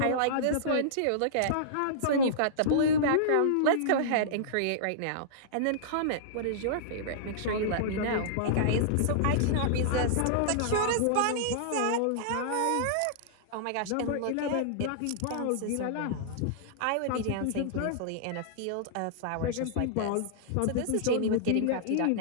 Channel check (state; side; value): different; both; correlation -0.02